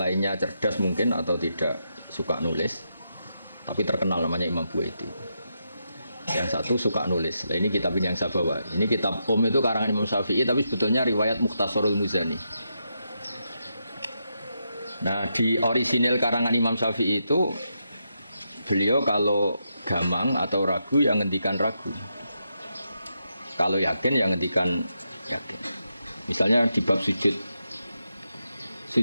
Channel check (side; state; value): both; inverted; correlation -0.83